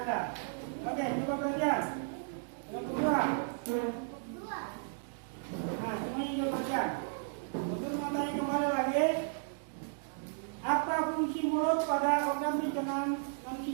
Anda. Oke, coba perhatian. Yang kedua. Nah, semuanya coba perhatian. Guru mau tanya kembali lagi. Apa fungsi mulut pada organ pencernaan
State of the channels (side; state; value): left; silent; digital silence